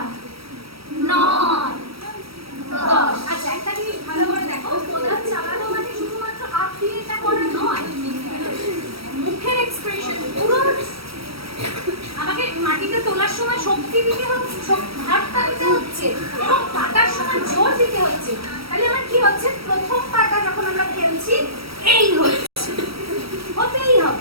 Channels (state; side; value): late; left; 0.75 ms